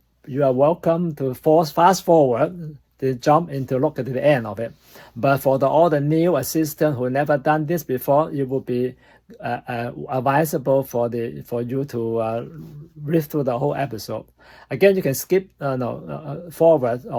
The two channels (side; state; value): both; identical; correlation 1.00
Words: are welcome to fast forward to jump into look at the end of it. But for all the new assistants who never done this before, it will be advisable for you to read through the whole episode. Again, you can skip forward,